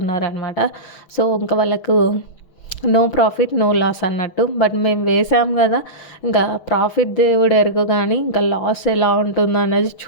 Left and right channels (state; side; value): late; right; 6.3 ms